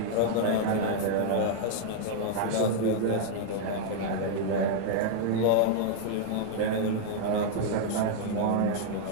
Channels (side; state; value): both; different; correlation -0.01